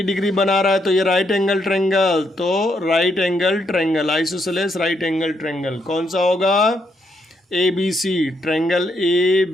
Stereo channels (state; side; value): normal; both; correlation 0.76